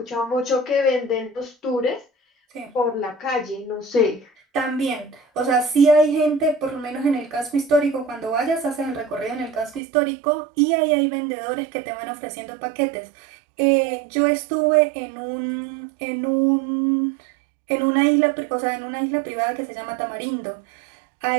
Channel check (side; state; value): left; drops out; at 9.8 s